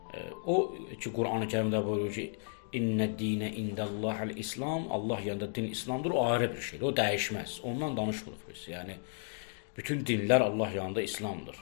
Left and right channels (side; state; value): right; silent; digital silence